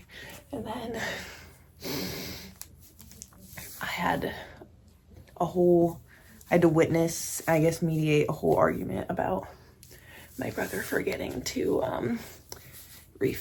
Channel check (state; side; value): identical; both; correlation 1.00